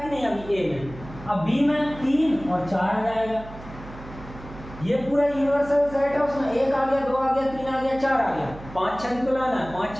नहीं अभी ए में। अब बी में 3 और 4 आ जाएगा। ये पूरा यूनिवर्सल सेट है, उसमें 1 आ गया, 2 आ गया, 3 आ गया, 4 आ गया, 5 6 तो लाना है। 5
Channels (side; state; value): right; noise; hum, 16 dB below the sound